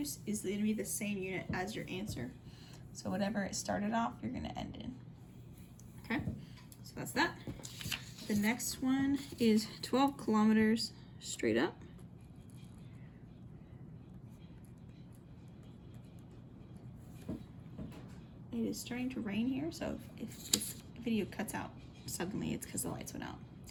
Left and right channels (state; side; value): identical; both; correlation 1.00